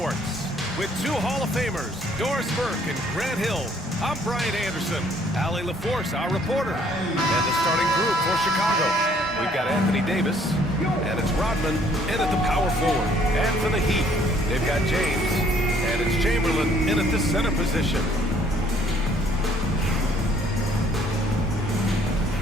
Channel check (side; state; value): both; normal; correlation 0.62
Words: With two Hall of Famers, Doris Burke and Grant Hill, I'm Brian Anderson, Allie LaForce, our reporter, and the starting group for Chicago. We've got Anthony Davis, and it's Rodman in at the power forward. And for the Heat, they've got James, and it's Chamberlain in at the center position.